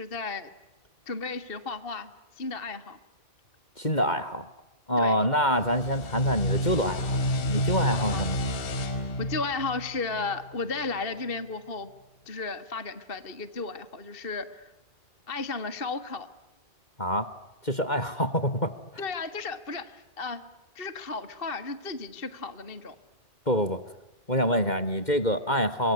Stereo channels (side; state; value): right; late; 2.1 ms